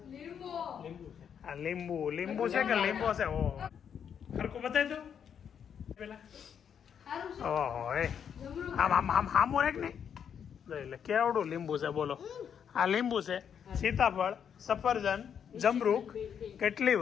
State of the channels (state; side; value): quieter; right; 8.0 dB